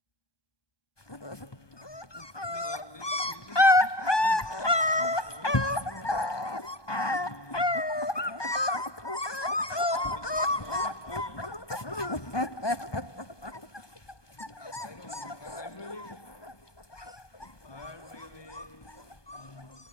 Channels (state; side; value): late; right; 1.2 ms